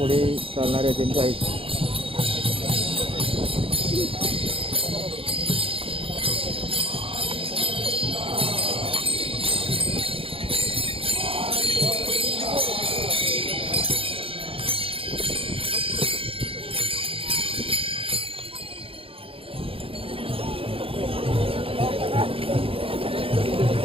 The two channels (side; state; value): left; late; 0.27 ms